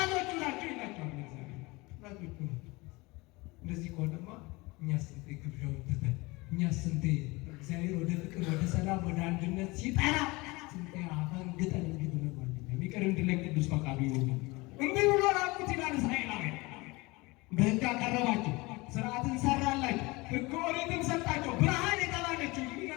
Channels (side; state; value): right; quieter; 23.7 dB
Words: ናቸው ይላቸዋል። ጠላቶቹ እንደዚህ ከሆነማ እኛ ስንቴ ግብዣውን ትተን እኛ ስንቴ እግዚአብሔር ወደ ፍቅር፣ ወደ ሰላም፣ ወደ አንድነት ሲጠራ ስንቴ አፈንግጠን እንዲህ ብለን የሚቀር እንድለን ቅዱስ ፈቃዱ ይሆን። እንዲህ ብሎ ራቁት ይላል። እስራኤላውያን በሕግ አቀረባቸው፣ ስርዓትን ሰራላቸው፣ ሕገ ኦሪትን ሰጣቸው፣ ብርሃን የተባለችው